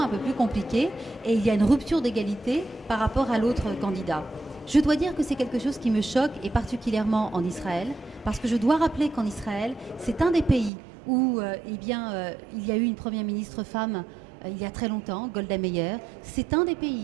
un peu plus compliquée et il y a une rupture d'égalité par rapport à l'autre candidat. Je dois dire que c'est quelque chose qui me choque, et particulièrement en Israël, parce que je dois rappeler qu'en Israël, c'est un des pays où il y a eu une première ministre femme il y a très longtemps, Golda Meir. C'est un des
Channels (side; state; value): left; drops out; at 10.7 s